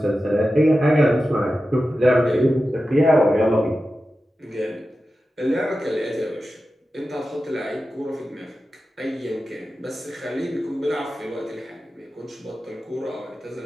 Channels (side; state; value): both; normal; correlation 0.93